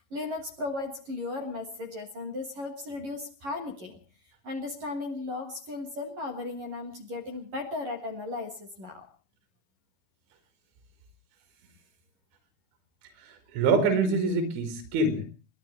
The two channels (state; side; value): late; left; 11 ms